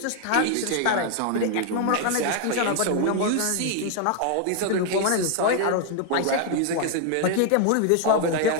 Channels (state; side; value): different; both; correlation 0.00